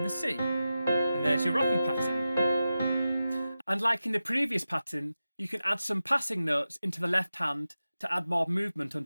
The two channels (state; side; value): inverted; both; correlation -0.93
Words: the C. And there's your rocking pattern. And like in the previous pattern, you can add some passing notes into the left hand to add more movement